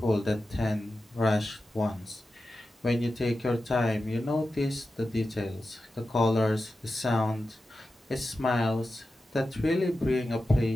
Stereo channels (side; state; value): both; normal; correlation 0.92